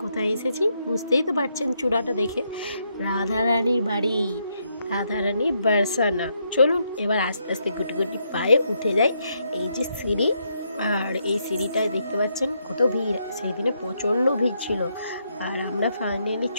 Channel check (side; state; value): both; inverted; correlation -0.77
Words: কোথায় এসেছি, বুঝতেই তো পারছেন চূড়াটা দেখে। রাধারানীর বাড়ি, রাধারানী বারসানা। চলুন এবার আস্তে আস্তে গুটি গুটি পায়ে উঠে যাই। এই যে সিঁড়ি, আর এই সিঁড়িটায় দেখতে পাচ্ছেন কত ভিড়। সেই দিনে প্রচণ্ড ভিড় ছিল, আর আমরা ফাইনালি